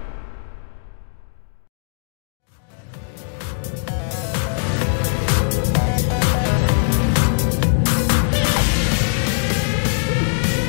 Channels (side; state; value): right; silent; digital silence